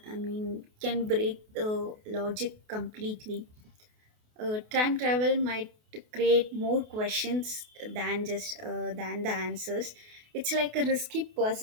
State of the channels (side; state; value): left; late; 28 ms